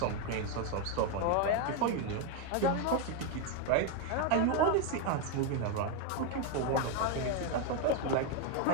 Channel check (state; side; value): different; both; correlation 0.02